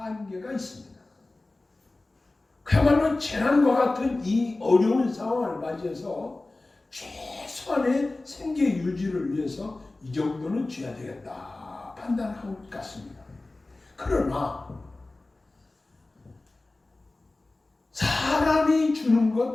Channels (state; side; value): quieter; right; 3.0 dB